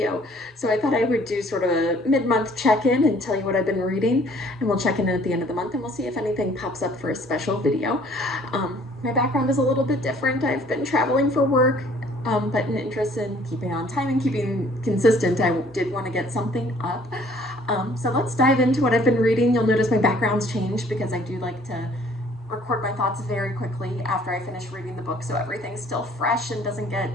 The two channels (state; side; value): normal; both; correlation 0.57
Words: So I thought I would do sort of a mid-month check-in and tell you what I've been reading, and we'll check in at the end of the month, and we'll see if anything pops up for a special video. My background is a little bit different. I've been traveling for work, but an interest in keeping on time and keeping consistent, I did want to get something up. So let's dive into what I've been reading. You'll notice my background's changed because I do like to record my thoughts very quickly after I finish reading the book so everything's still fresh and doesn't